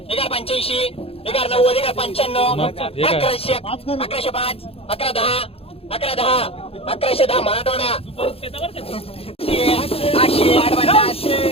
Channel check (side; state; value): right; late; 0.28 ms